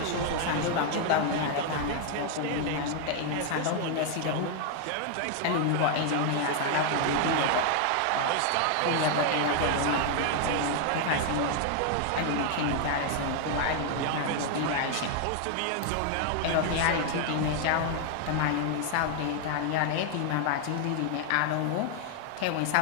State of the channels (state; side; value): different; both; correlation 0.00